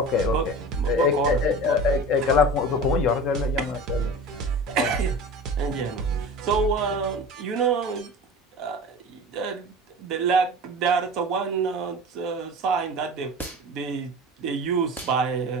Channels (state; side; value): normal; both; correlation 0.35